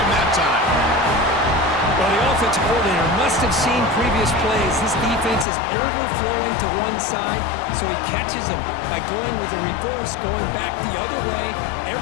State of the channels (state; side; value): drops out; right; at 5.5 s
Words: him that time. Well, the offensive coordinator must have seen previous plays. This defense is overflowing to one side, so he catches them by going with a reverse, going back the other way.